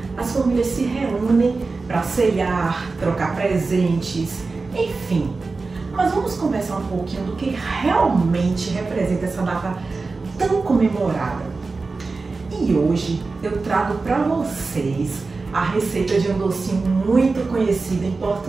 as famílias se reúnem para ceiar, trocar presentes, enfim. Mas vamos conversar um pouquinho do que realmente representa essa data tão comemorada. E hoje eu trago para vocês a receita de um docinho muito conhecido em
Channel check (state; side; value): quieter; left; 4.0 dB